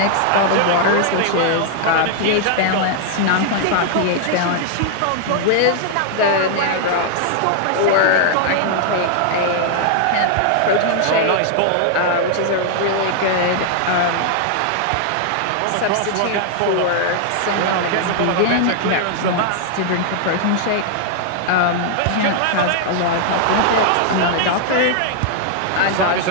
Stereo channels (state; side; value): different; both; correlation 0.00